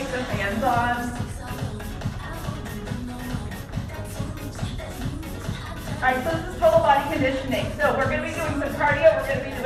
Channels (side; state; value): both; identical; correlation 1.00